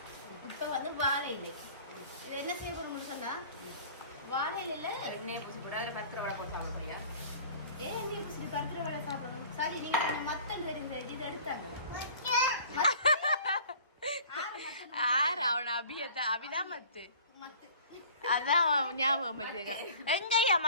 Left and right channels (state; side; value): inverted; both; correlation -0.46